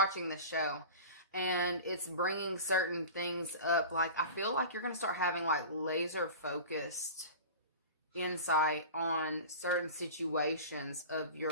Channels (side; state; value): both; inverted; correlation -0.34